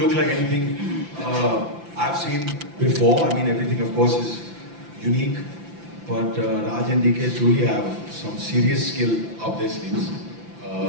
like anything I've seen before. I mean, everything of course is unique. But Raj and DK truly have some serious skill up their sleeves.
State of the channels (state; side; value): late; left; 5.9 ms